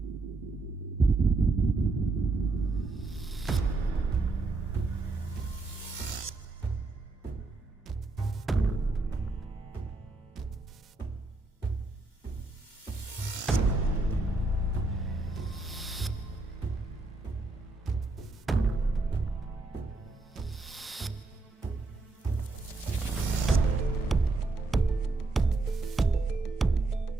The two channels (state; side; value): quieter; left; 3.3 dB